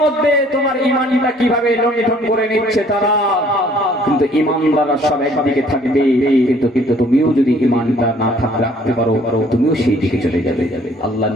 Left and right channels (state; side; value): normal; both; correlation 0.59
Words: মধ্যে তোমার ঈমানটা কিভাবে লণ্ঠন করে নিচ্ছে তারা। কিন্তু ঈমানদাররা সব একদিকে থাকবে, কিন্তু তুমিও যদি ঈমানটা না রাখতে পারো, তুমিও সেই দিকে চলে যাবে। আল্লাহর